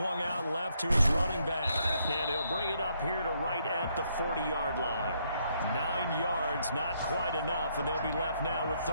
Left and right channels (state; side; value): inverted; both; correlation -0.73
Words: out left to his running back. And he'll bring it up here to right at the 40-yard line. 9 yards, not quite enough, and they'll be left now with